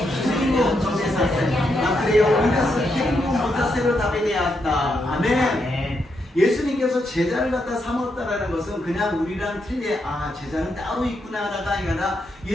救いを助けさせ、悪霊を追い出す権威を持たせるためであった。アメン。 예수님께서 제자를 갖다 삼았다라는 것은 그냥 우리랑 틀리 제자는 따로 있구나가 아니라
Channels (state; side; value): normal; both; correlation 0.81